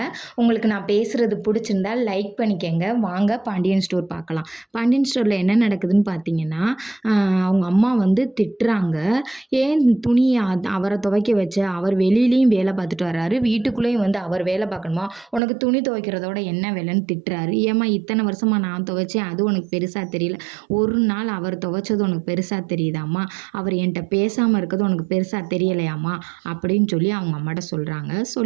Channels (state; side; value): drops out; left; at 15.4 s